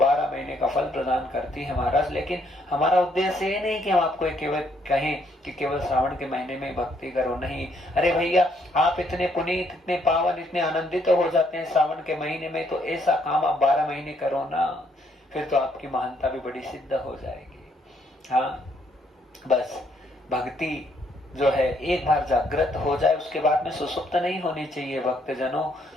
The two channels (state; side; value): normal; both; correlation 0.70